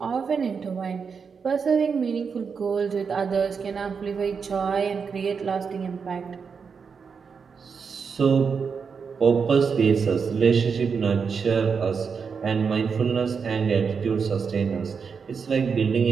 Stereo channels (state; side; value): quieter; left; 5.9 dB